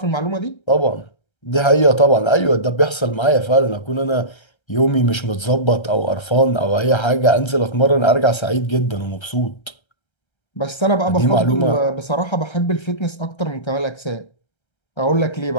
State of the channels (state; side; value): late; right; 1.3 ms